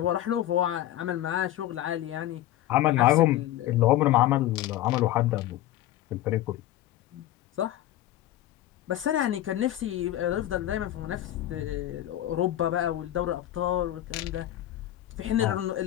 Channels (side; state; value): right; quieter; 13.8 dB